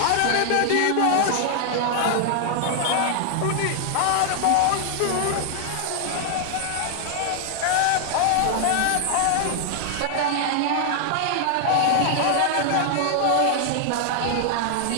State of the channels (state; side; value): different; both; correlation 0.00